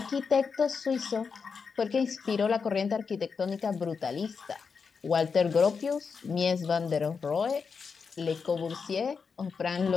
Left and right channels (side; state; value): right; quieter; 5.5 dB